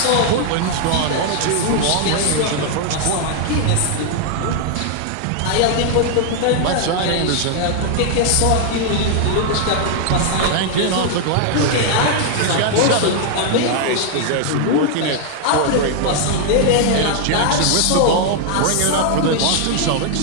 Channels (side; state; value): both; different; correlation 0.00